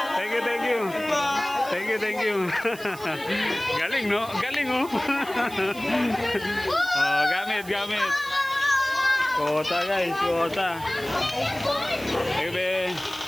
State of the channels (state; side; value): noise; right; hiss, 17 dB below the sound